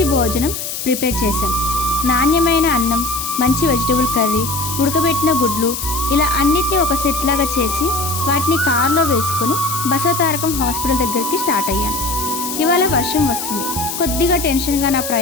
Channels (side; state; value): left; noise; hiss, 6 dB below the sound